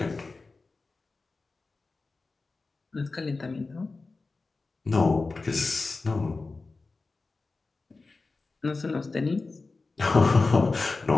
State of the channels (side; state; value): right; quieter; 3.8 dB